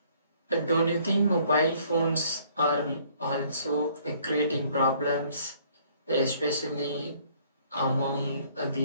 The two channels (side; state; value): both; inverted; correlation -0.61